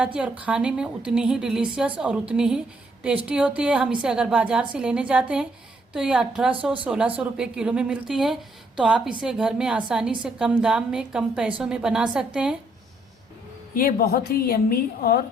है और खाने में उतनी ही डिलीशियस और उतनी ही टेस्टी होती है। हम इसे अगर बाज़ार से लेने जाते हैं तो ये 1800-1600 रुपये किलो में मिलती है, तो आप इसे घर में आसानी से कम दाम में कम पैसों में बना सकते हैं। ये बहुत ही यम्मी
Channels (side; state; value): both; normal; correlation 0.71